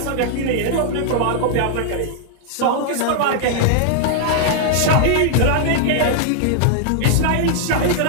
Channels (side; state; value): both; different; correlation -0.01